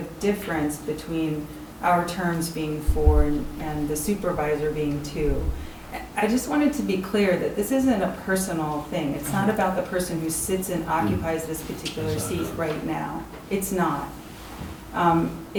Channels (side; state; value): both; identical; correlation 1.00